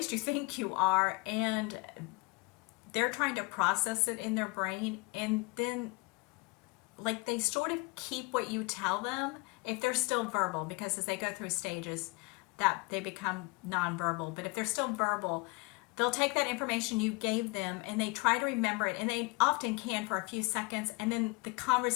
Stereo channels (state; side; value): quieter; right; 27.7 dB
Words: you think you are, and they're trying to process it in their brain, and then like they sort of keep what you tell them if they're still verbal, because as they go through stages that they become nonverbal. But if they're still verbal, they'll take that information you gave them and they try to remember it, and they often can for a few seconds, and then the